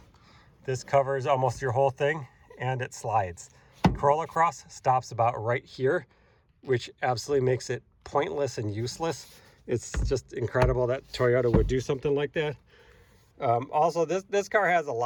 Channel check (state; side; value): identical; both; correlation 1.00